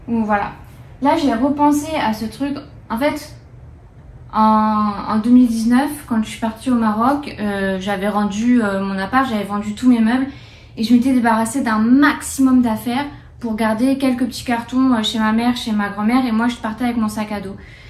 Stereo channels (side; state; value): both; identical; correlation 1.00